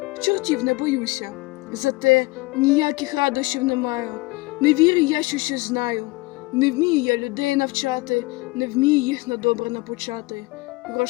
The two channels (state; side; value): quieter; right; 22.4 dB